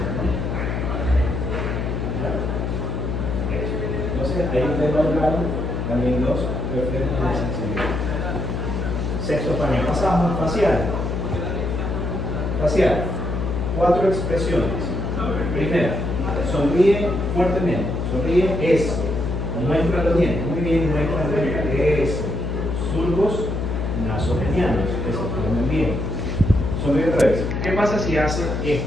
Entonces, ahí ustedes valoraron también los reflejos de sensibilidad. Sexto panel. Pasamos facial. Facial. 4 expresiones. Primera, sonríe fuertemente. Sonríe eso. Muestra los dientes. Muy bien, muestra los dientes. Eso. Surcos nasogenianos. Que se formen bien. Sonríe otra vez. ¿Qué pasa si hace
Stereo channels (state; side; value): noise; left; hum, 2 dB below the sound